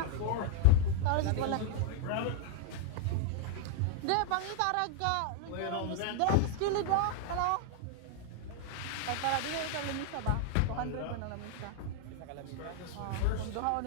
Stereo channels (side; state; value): both; different; correlation 0.00